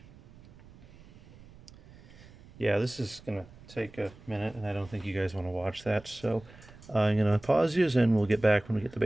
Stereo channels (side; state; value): right; noise; rumble, 22 dB below the sound